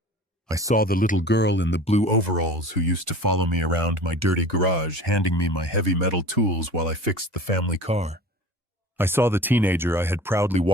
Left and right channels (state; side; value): normal; both; correlation 0.40